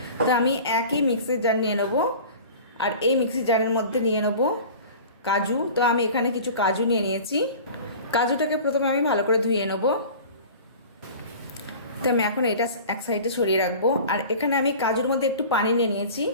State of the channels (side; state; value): both; inverted; correlation -0.39